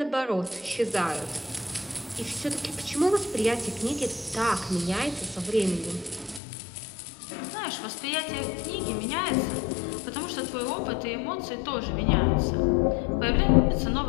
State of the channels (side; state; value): right; drops out; at 6.4 s